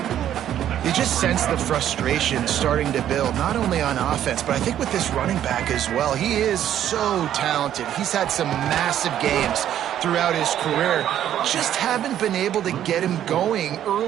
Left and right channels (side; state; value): left; quieter; 11.0 dB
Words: You just sense the frustration starting to build, not only on offense, but I think with this running back as well. He is so talented. He's had some massive games throughout his career. Just haven't been able to get him going